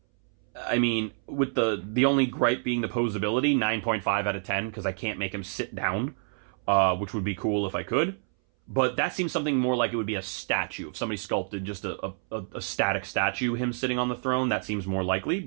I mean, with the only gripe being the posability, 9.5 out of 10, because I can't make him sit down, which would be cool if I could. But that seems something more like it would be a statue. If somebody sculpted just a static statue, him sitting on the throne, that seems more likely.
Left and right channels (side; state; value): left; silent; 59 dB below the other